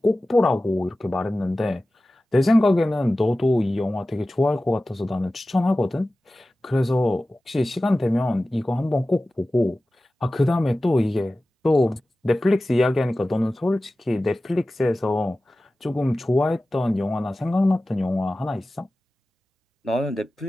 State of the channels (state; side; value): normal; both; correlation 0.96